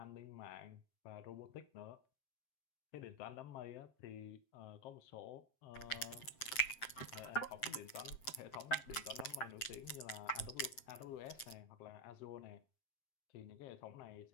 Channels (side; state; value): right; late; 7.7 ms